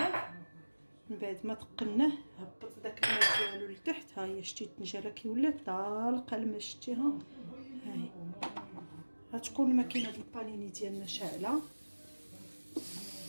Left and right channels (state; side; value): inverted; both; correlation -1.00